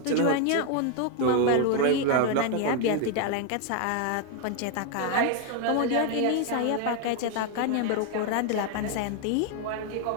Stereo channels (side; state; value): both; different; correlation 0.01